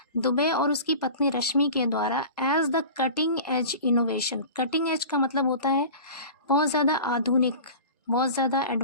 Dubey और उसकी पत्नी रश्मि के द्वारा, as the cutting edge innovation. Cutting edge का मतलब होता है बहुत ज़्यादा आधुनिक, बहुत ज़्यादा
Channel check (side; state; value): both; inverted; correlation -0.37